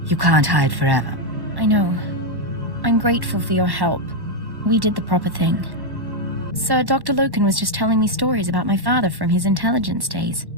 You can't hide forever. I know. I'm grateful for your help. We did the proper thing. Sir, Dr. Loken was just telling me stories about my father from his intelligence days.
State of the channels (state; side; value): late; left; 1.1 ms